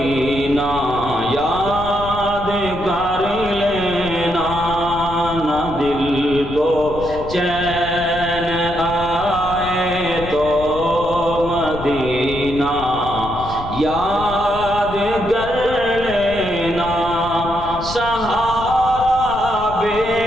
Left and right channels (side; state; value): left; noise; rumble, 11 dB below the sound